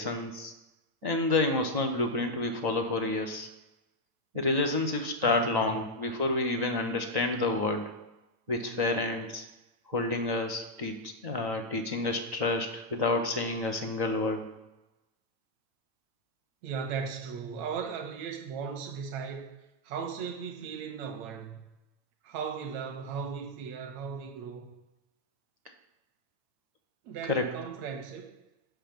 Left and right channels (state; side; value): late; left; 8.9 ms